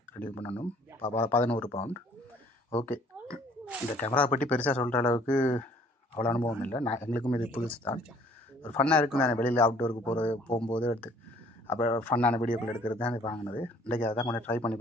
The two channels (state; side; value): normal; both; correlation 0.57